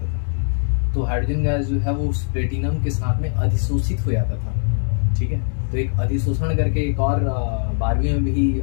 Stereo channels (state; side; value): silent; right; digital silence